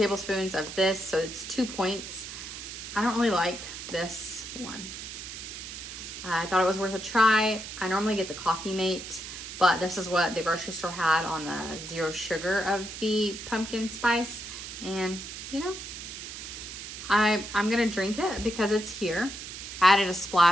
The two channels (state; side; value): noise; right; hiss, 10 dB below the sound